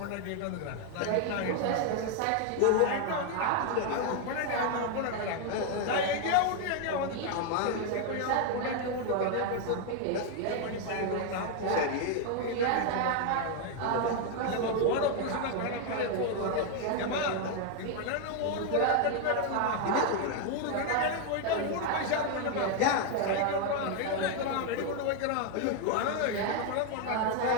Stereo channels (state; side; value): different; both; correlation 0.01